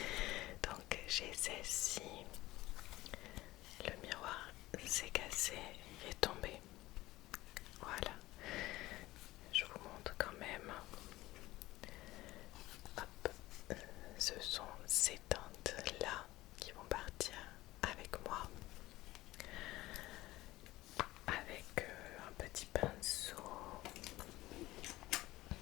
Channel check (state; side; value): quieter; right; 17.8 dB